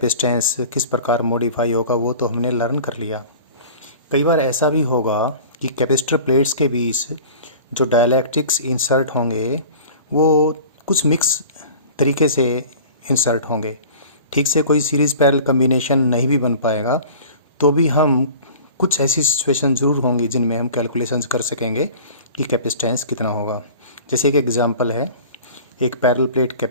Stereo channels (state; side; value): inverted; both; correlation -0.42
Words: किस प्रकार मॉडिफाई होगा, वो तो हमने लर्न कर लिया। कई बार ऐसा भी होगा कि कैपेसिटर प्लेट्स के बीच जो डाइलेक्ट्रिक्स इंसर्ट होंगे वो कुछ मिक्स तरीके से इंसर्ट होंगे। ठीक से कोई सीरीज़ पैरेलल कम्बिनेशन नहीं भी बन पाएगा, तो भी हम कुछ ऐसी सिचुएशन ज़रूर होंगी जिनमें हम कैलकुलेशंस कर सकेंगे कि कैपेसिटेंस कितना होगा। जैसे एक एग्जांपल है, एक पैरेलल प्लेट